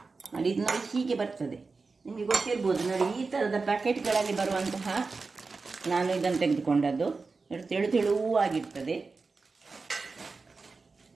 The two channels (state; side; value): quieter; left; 4.2 dB